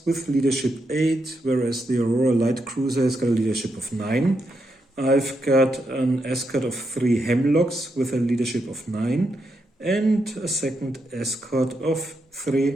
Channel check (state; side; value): normal; both; correlation 0.82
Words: with leadership 8, whereas the Aurora light cruiser has got a leadership of 9. I've got an escort of 3 Hemlocks with a leadership of 9, and a second escort of